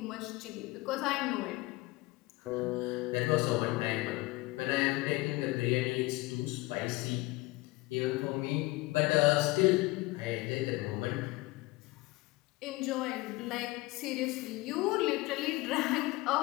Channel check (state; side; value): quieter; right; 21.1 dB